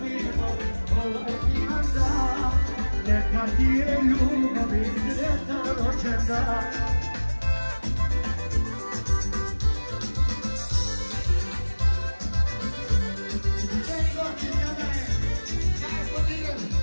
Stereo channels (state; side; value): inverted; both; correlation -1.00